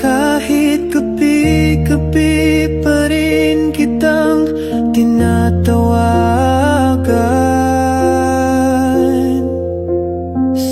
gabi-gabi pa rin kitang tinatawagan.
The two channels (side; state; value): both; identical; correlation 1.00